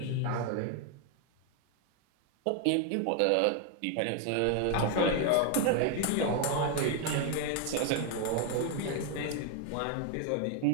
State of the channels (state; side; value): different; both; correlation 0.01